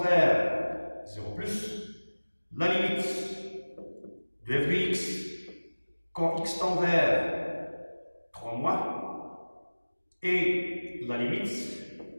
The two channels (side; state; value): both; inverted; correlation -1.00